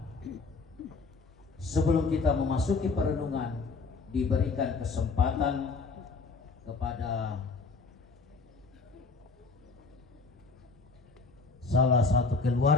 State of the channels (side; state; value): right; quieter; 4.0 dB